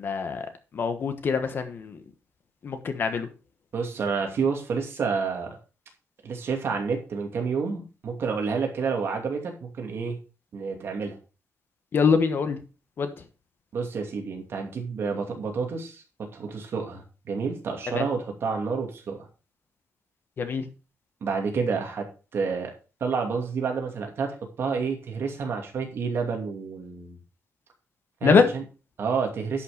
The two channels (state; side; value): normal; both; correlation 0.70